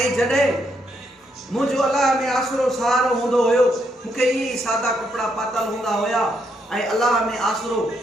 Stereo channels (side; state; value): both; normal; correlation 0.76